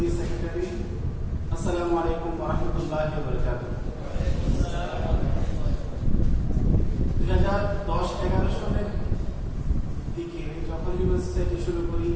সেক্রেটারি। আসসালামু আলাইকুম ওয়া রাহমাতুল্লাহি ওয়া বারাকাতুহু। 2010-11 সালের দিকে যখন হিউম্যান সোসাইটি শুরু করি,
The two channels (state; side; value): identical; both; correlation 1.00